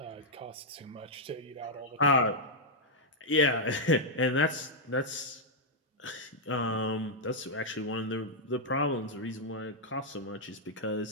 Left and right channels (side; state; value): both; normal; correlation -0.04